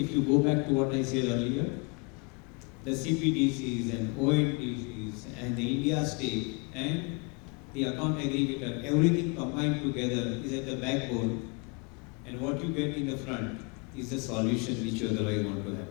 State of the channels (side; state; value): right; quieter; 33.1 dB